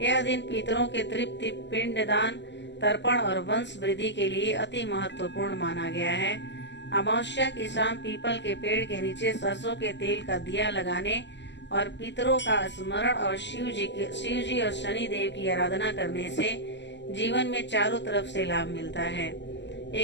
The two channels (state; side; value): late; right; 0.52 ms